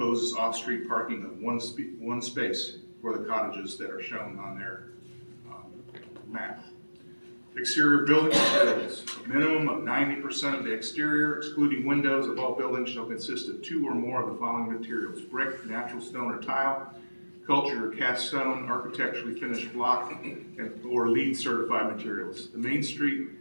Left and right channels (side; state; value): both; inverted; correlation -1.00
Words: off-street parking of one space for the cottages that are shown on their map. Exterior building materials. A minimum of 90% of the exterior, excluding windows, of all buildings shall consist of 2 or more of the following materials: brick, natural stone or tile, cultured or cast stone, architecturally finished block, or LEED certified materials. The Main Street